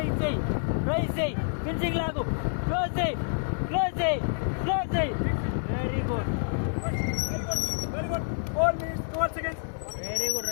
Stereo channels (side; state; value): right; silent; digital silence